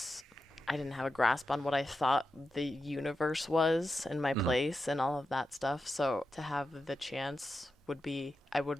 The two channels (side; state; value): both; normal; correlation 0.89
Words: I didn't have a grasp on what I thought the universe was and my place and all of that stuff. So to have the chance I